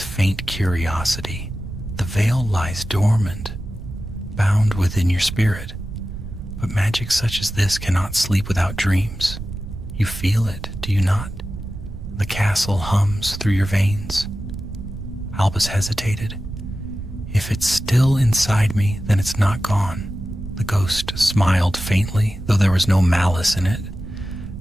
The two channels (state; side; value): noise; right; rumble, 10 dB below the sound